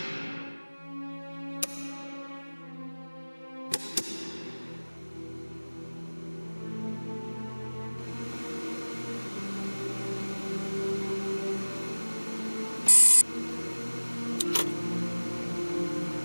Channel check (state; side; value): inverted; both; correlation -1.00